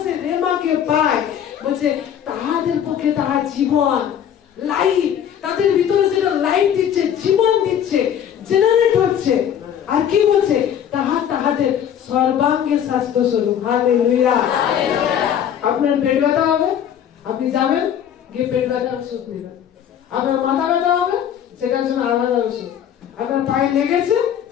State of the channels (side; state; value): right; quieter; 9.4 dB